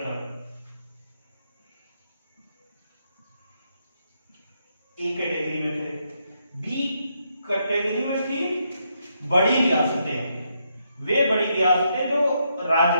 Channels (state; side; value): inverted; both; correlation -0.79